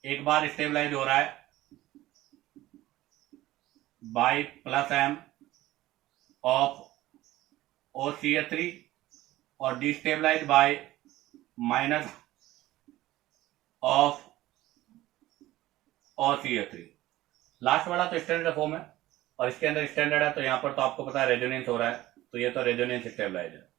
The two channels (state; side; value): quieter; left; 16.3 dB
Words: एक बार स्टेबलाइज हो रहा है bye plus M of OCH3 और destabilise by minus of OCH3। Last वाला तो स्टैंडर्ड फॉर्म है और इसके अंदर स्टैंडर्ड है, तो यहां पर तो आपको पता है रेजोनेंस हो रहा है, तो ये तो रेजोनेंस स्टेबलाइज है।